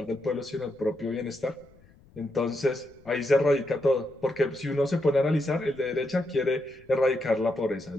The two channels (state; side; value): noise; left; rumble, 28 dB below the sound